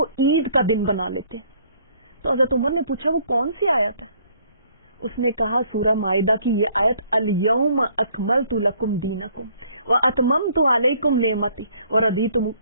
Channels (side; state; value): both; inverted; correlation -0.62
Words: عید کا دن بنا لیتے. تو حضرت عمر نے پوچھا وہ کون سی آیت ہے؟ اس نے کہا سورہ مائدہ کی یہ آیت, الیوم اکملت لکم دینکم واتممت علیکم نعمتی